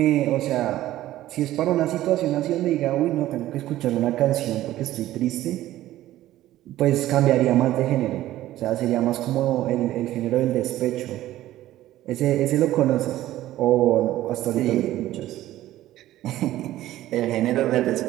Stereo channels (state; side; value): quieter; left; 14.6 dB